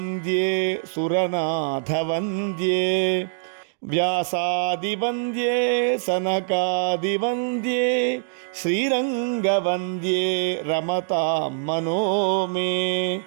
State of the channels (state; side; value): silent; left; digital silence